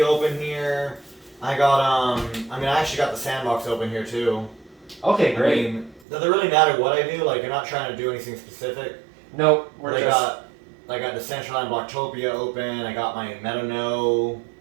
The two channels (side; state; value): left; drops out; at 6.1 s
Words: open here. I got I actually got the sandbox open here too. Okay, great. I mean, does it really matter what I do? You're not trying to do anything specific. No, we're just. I got Decentraland Blocktopia open. I got my MetaNo